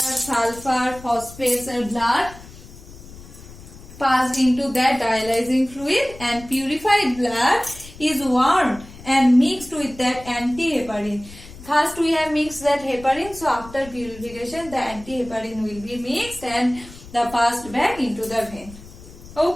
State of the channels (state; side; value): noise; left; rumble, 18 dB below the sound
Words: sulfur, phosphates and blood passed into that dialyzing fluid, and purified blood is warmed and mixed with that anti-heparin. First we have mixed that heparin, so after purification the anti-heparin will be mixed and the passed back into the vein.